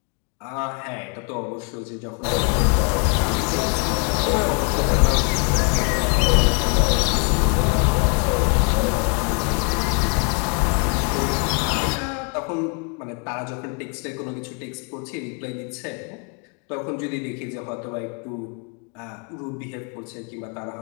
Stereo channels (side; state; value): right; quieter; 36.3 dB